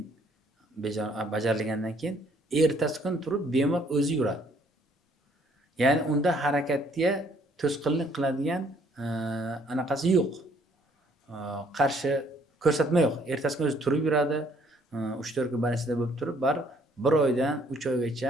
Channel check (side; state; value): both; normal; correlation 0.63